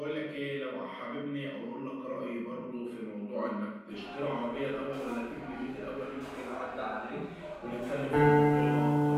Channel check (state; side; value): identical; both; correlation 1.00